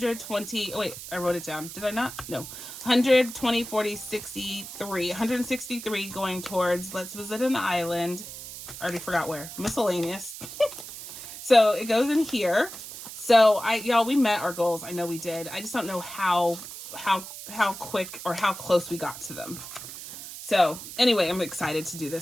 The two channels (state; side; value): noise; right; hiss, 11 dB below the sound